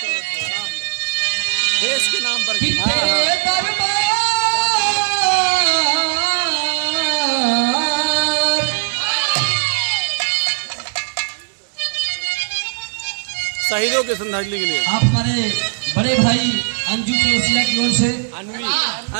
देश के नाम पर शहीदों के श्रद्धांजलि के लिए आप हमारे बड़े भाई अंजू चौरसिया की ओर से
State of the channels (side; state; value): left; silent; 66 dB below the other